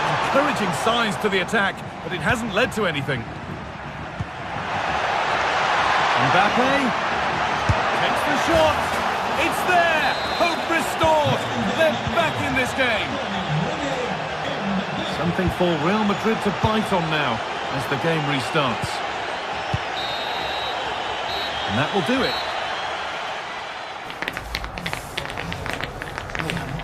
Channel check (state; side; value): identical; both; correlation 1.00